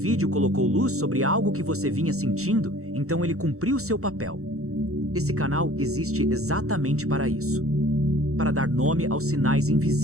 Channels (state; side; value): late; left; 0.64 ms